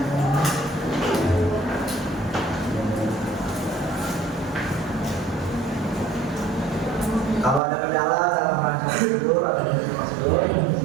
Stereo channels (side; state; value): left; drops out; at 7.6 s